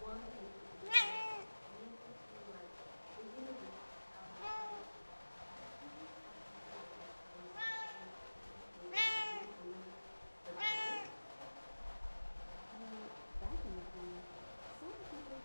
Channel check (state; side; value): inverted; both; correlation -1.00